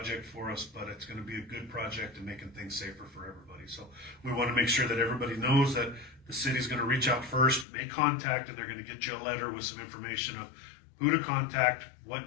for us, but it's going to be a good project and making things safer for everybody. So we want to make sure that everybody knows that the city's going to reach out first, make contact, and they're going to get you a letter with some information of who to contact, what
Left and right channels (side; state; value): right; drops out; at 7.7 s